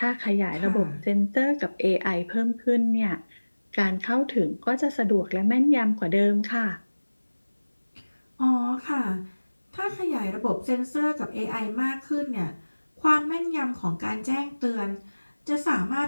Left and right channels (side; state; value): both; inverted; correlation -1.00